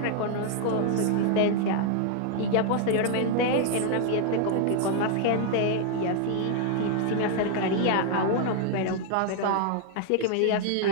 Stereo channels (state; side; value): different; both; correlation 0.00